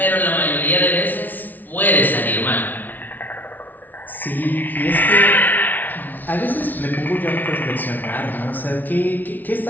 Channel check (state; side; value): late; right; 0.082 ms